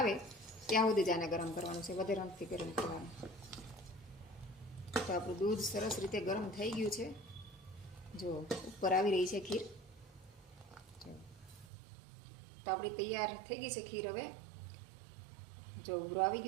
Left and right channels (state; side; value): drops out; left; at 11.7 s